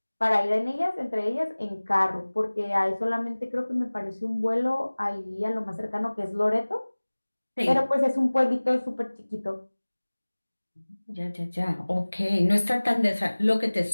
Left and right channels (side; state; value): both; inverted; correlation -1.00